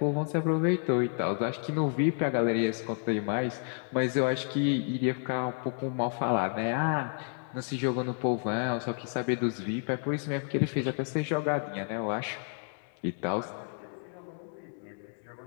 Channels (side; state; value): right; silent; 57 dB below the other